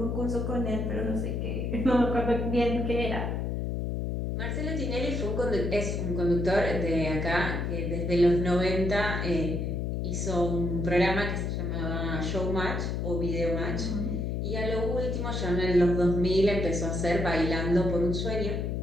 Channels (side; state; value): left; noise; hum, 1 dB below the sound